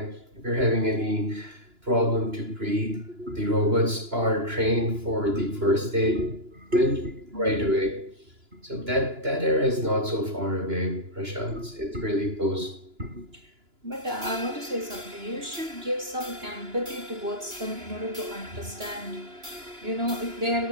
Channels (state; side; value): late; left; 2.9 ms